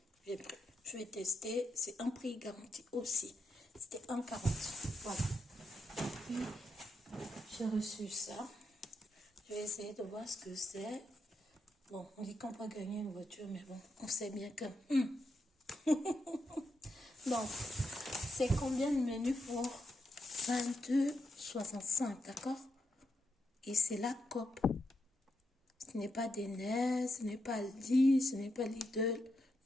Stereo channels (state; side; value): normal; both; correlation 0.83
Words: J'ai pris. Je vais tester, c'est un prix garanti aussi. C'était 1,40. Voilà. Puis j'ai reçu ça. Je vais essayer de voir ce que c'est. Bon, on dit qu'on peut gagner une voiture, mais bon, on sait bien que... Donc, c'est combien de menus pour 22,65, d'accord? Et c'est la COP. Ce n'est pas des NES, ce n'est pas Aldi, ce n'est pas Lidl.